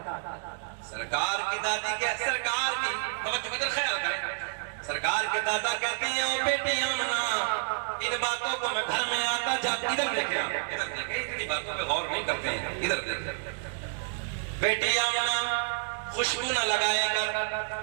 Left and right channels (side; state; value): left; silent; digital silence